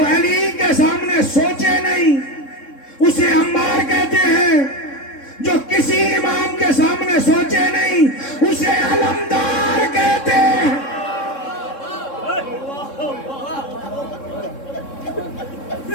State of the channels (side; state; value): right; late; 3.7 ms